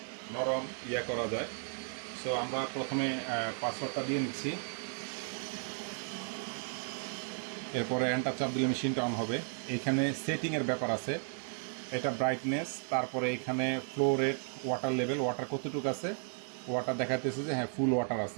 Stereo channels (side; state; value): left; silent; 55 dB below the other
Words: নরম করা যায়। সো আমরা প্রথমে পাসওয়ার্ডটা দিয়ে নিচ্ছি, এরপরে এন্টার চাপ দিলে মেশিনটা অন হবে। এইখানে সেটিংয়ের ব্যাপার আছে, এটা ব্রাইটনেস, তারপরে এখানে flow rate, water level, water কতটুকু আছে, ওয়াটার দেখাতেছে যে হ্যাঁ ফুল ওয়াটার